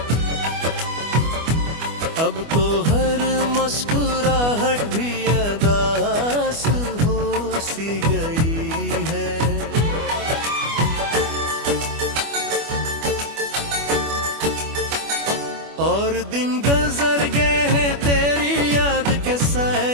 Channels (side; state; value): left; late; 25 ms